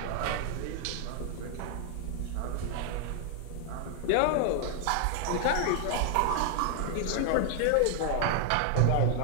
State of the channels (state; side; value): different; both; correlation 0.00